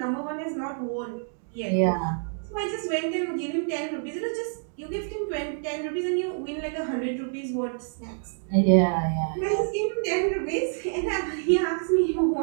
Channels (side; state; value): left; silent; 60 dB below the other